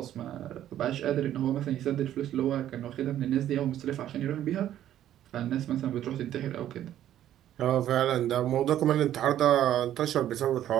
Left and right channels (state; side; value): quieter; left; 11.8 dB